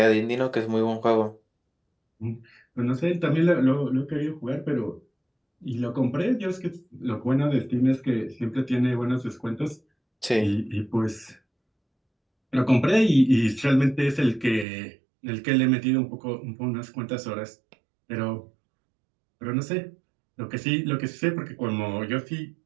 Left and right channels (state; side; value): drops out; left; at 14.7 s